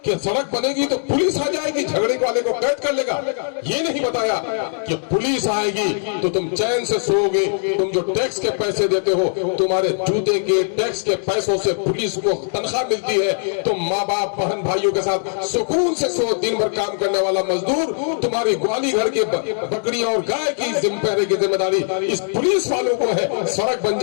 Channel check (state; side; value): silent; right; 65 dB below the other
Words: कि सड़क बनेगी तो पुलिस आ जाएगी, झगड़े वाले को कैद कर लेगा। ये नहीं बताया कि पुलिस आएगी तो तुम चैन से सोओगे, तुम जो टैक्स के पैसे देते हो, तुम्हारे जूते के टैक्स के पैसों से पुलिस को तनख्वाह मिलती है, तुम माँ बाप बहन भाइयों के साथ सुकून से सो। दिन भर काम करने वाला मजदूर तुम्हारी ग्वाली घर के बकरियां और गाय की पहरे की जिम्मेदारी इस पुलिस वालों को है। सड़क बन